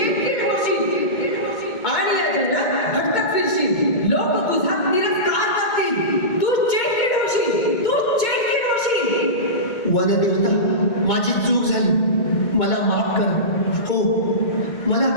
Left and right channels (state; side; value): late; right; 2.2 ms